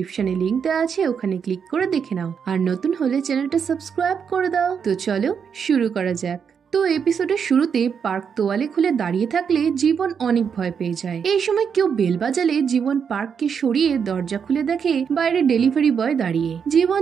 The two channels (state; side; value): quieter; left; 6.9 dB